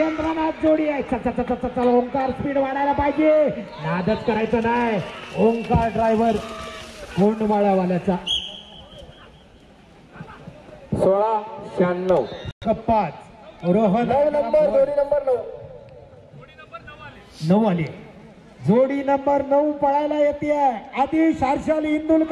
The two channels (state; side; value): identical; both; correlation 1.00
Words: जोडी आहे चल ओंकार स्पीड वाढायला पाहिजे नादच करायचं नाही ओंकार ड्रायव्हर कोंडमाळावाल्याचा 16-96 5 रोहन जोडी नंबर 9 आली जोडी नंबर 9 पळायला येते आदिश हर्षल